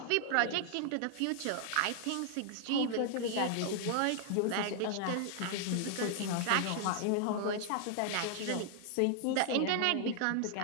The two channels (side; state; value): both; different; correlation 0.00